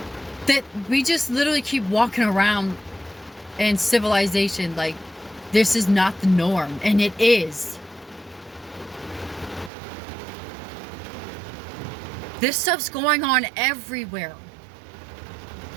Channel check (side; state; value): left; drops out; at 9.7 s